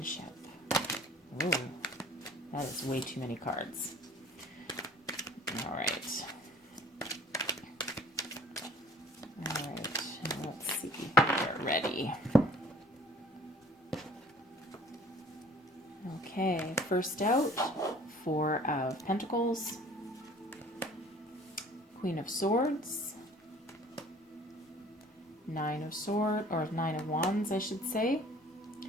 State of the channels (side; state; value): both; normal; correlation 0.51